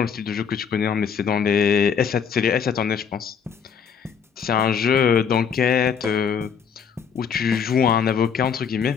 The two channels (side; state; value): right; quieter; 7.0 dB